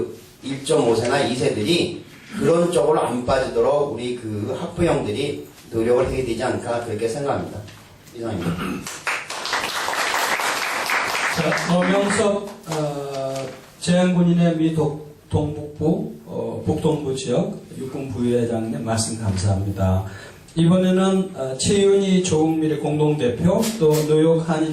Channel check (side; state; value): both; identical; correlation 1.00